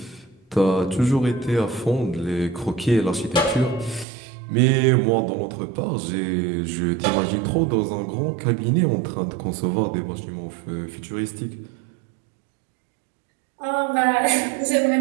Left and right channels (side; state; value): left; drops out; at 4.0 s